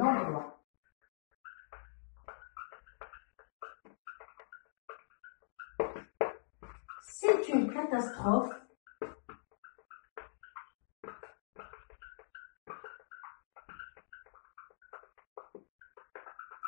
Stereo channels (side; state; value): right; silent; digital silence